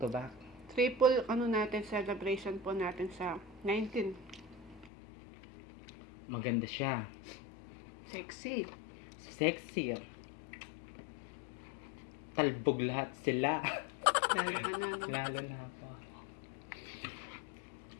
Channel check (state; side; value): drops out; right; at 4.9 s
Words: to back. Triple, ano natin, celebration po natin sa 19. Maganda siya. Sexy. Sexy. Talbog lahat sila. Lalo ka na, no? Lalo na ako.